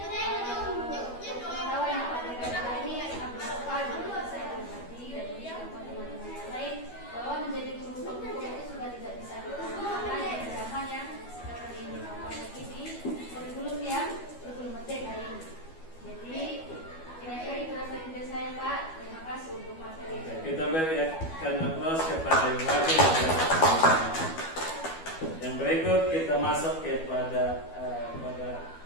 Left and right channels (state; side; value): late; right; 12 ms